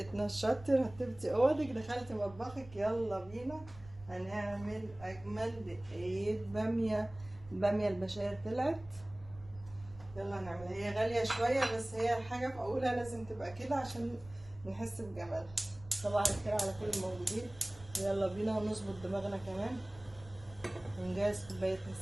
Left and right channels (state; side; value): noise; right; rumble, 19 dB below the sound